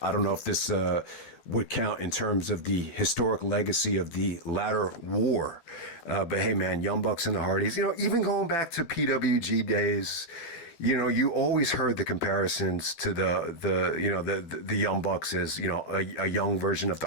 don't know if this would count in terms of the historic legacy of the ladder war. But hey, man, Young Bucks and the Hardys, even going back to PWG days, you always heard the comparisons to the Young Bucks as, a young version of the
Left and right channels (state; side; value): late; right; 12 ms